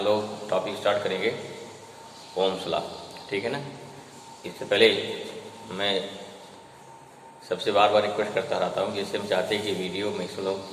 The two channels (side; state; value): both; identical; correlation 1.00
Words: लोग टॉपिक स्टार्ट करेंगे ओम्स लॉ, ठीक है ना। इससे पहले मैं सबसे बार बार रिक्वेस्ट करता रहता हूँ, जैसे हम चाहते हैं कि वीडियो